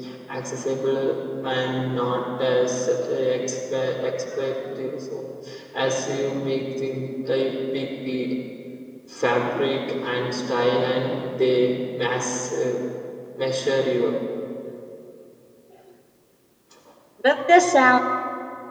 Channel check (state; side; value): identical; both; correlation 1.00